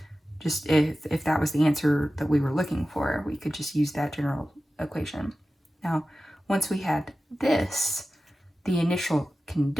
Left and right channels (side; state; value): both; normal; correlation 0.95